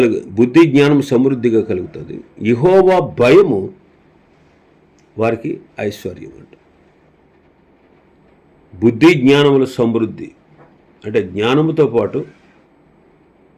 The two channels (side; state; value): both; identical; correlation 1.00